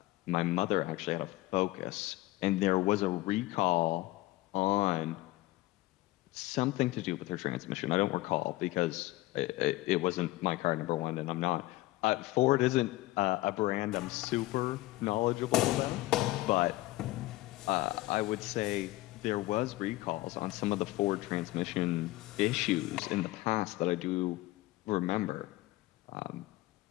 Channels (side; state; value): right; quieter; 18.2 dB